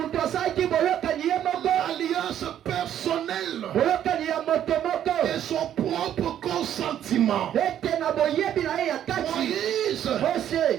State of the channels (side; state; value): left; quieter; 10.6 dB